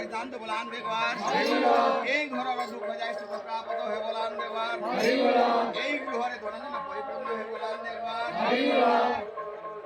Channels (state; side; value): identical; both; correlation 1.00